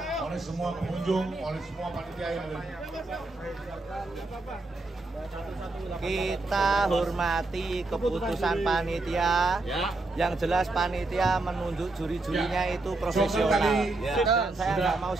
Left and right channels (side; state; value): left; quieter; 3.1 dB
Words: oleh semua pengunjung, oleh semua panitia yang ada. Kita hormati keputusan panitia. Yang jelas panitia menunjuk juri-jurinya itu profesional. Dan saya nggak mau